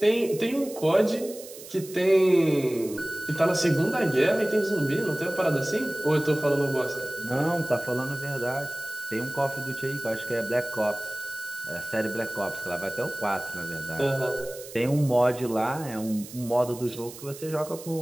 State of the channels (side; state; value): right; noise; hiss, 15 dB below the sound